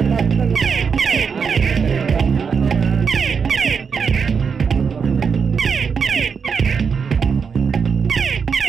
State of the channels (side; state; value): left; quieter; 6.0 dB